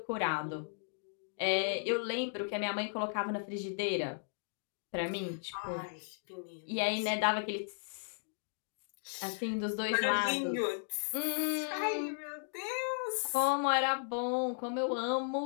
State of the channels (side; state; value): right; silent; digital silence